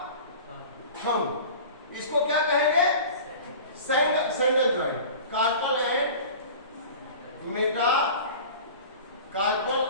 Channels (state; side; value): inverted; both; correlation -0.39